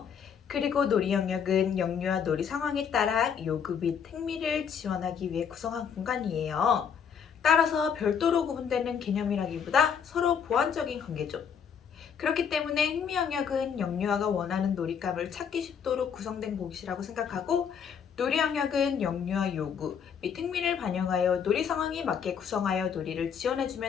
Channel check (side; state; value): right; quieter; 7.3 dB